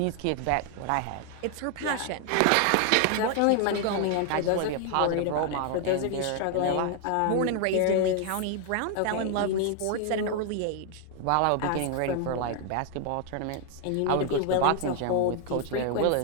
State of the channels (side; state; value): both; different; correlation 0.00